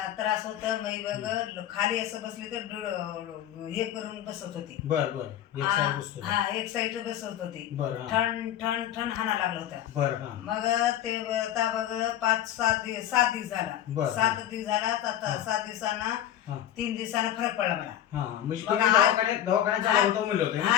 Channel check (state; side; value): quieter; right; 11.5 dB